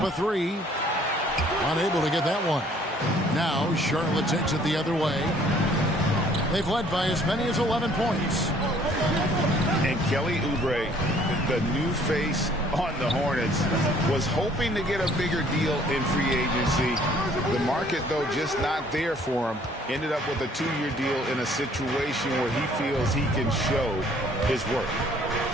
a 3. Unable to get that one. Now Charlotte takes it the other way. They've led by as many as 11 points. And Kelly Oubre, the new face on the Hornets, was hoping to get a bigger deal in free agency. The market, though, just not there for him. Ended up with a 2-year deal in a situation where he feels he can show his work.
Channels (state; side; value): normal; both; correlation 0.59